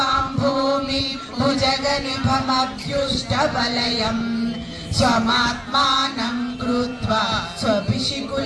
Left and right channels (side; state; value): both; identical; correlation 1.00